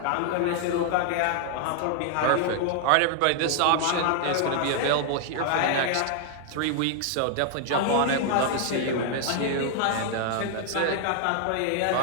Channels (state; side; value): different; both; correlation 0.00